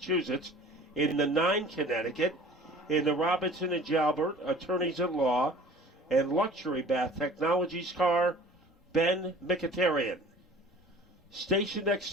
in the 9 Connecticut, in the Robinson and Jalbert Attorneys-at-Law and Luxury Bath Technologies car, Ben Mkhitaryan. Stationed next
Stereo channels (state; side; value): normal; both; correlation 0.46